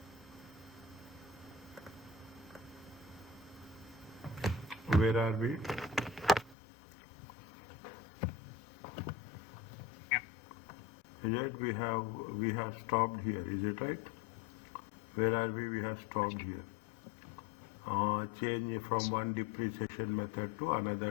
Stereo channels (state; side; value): drops out; right; at 6.6 s